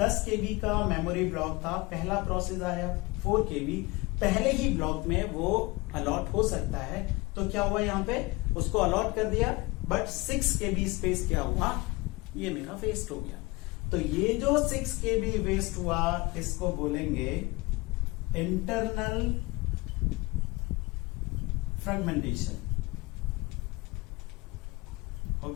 KB का मेमोरी ब्लॉक था, पहला प्रोसेस आया 4 KB, पहले ही ब्लॉक में वो अलॉट हो सकता है, तो क्या हुआ यहां पे उसको अलॉट कर दिया, बट 6 KB स्पेस क्या हुआ, ये मेरा वेस्ट हो गया। तो ये जो 6 KB वेस्ट हुआ इसको बोलेंगे इंटरनल फ्रेगमेंटेशन।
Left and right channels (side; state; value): right; quieter; 23.7 dB